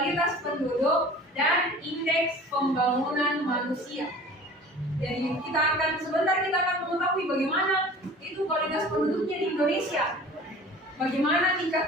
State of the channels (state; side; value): normal; both; correlation 0.43